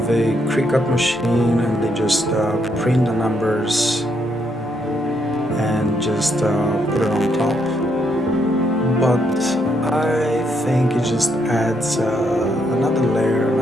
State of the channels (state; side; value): normal; both; correlation 0.75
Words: a Cricut machine and they just print the numbers and just put it on top. But I think it just adds another layer,